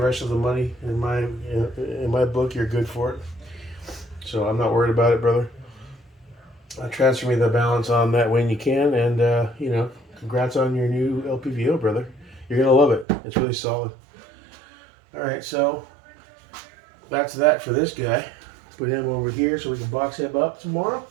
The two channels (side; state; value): left; drops out; at 13.1 s